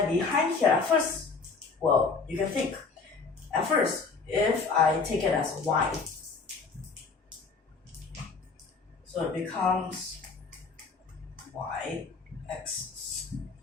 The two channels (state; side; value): quieter; right; 4.6 dB